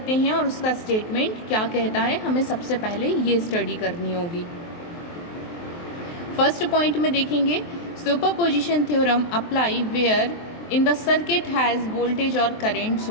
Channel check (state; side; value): late; right; 23 ms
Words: हैं और उसका statement क्या कहता है, हमें सबसे पहले ये स्टडी करनी होगी। फर्स्ट पॉइंट में देखेंगे superposition theorem apply where in the circuit has voltage और करंट